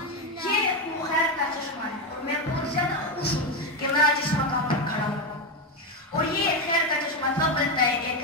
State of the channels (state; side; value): normal; both; correlation 0.10